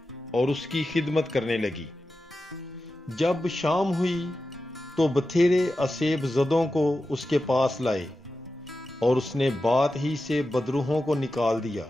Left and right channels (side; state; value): both; normal; correlation 0.92